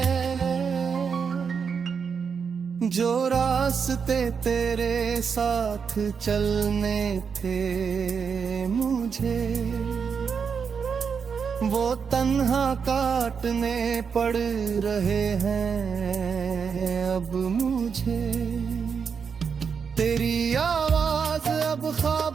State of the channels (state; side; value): quieter; left; 6.2 dB